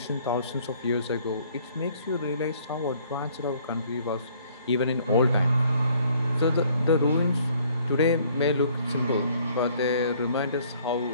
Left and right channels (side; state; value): both; inverted; correlation -0.60